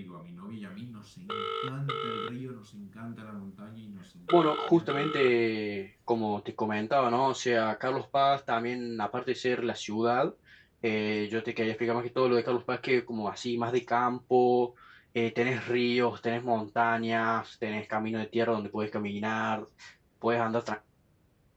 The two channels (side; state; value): both; identical; correlation 1.00